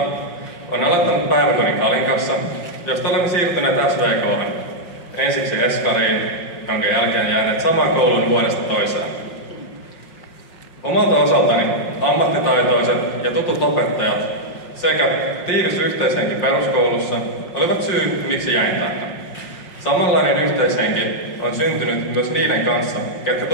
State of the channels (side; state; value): right; late; 5.5 ms